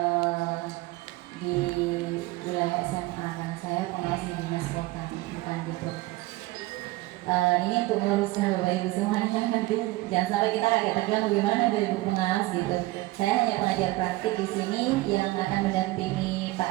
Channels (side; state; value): left; quieter; 19.5 dB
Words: di wilayah SMA. Nah, saya pengawas di dinas kota, bukan gitu. Ini untuk meluruskan Bapak Ibu semuanya, nanti jangan sampai kita agak terbilang bagaimana dari Ibu Pengawas gitu. Saya hanya pengajar praktik di sini yang akan mendampingi